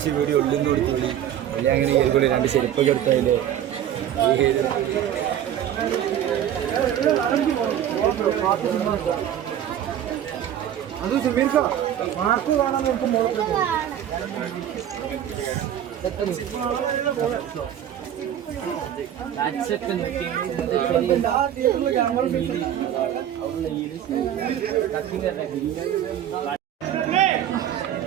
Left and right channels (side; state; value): left; quieter; 10.6 dB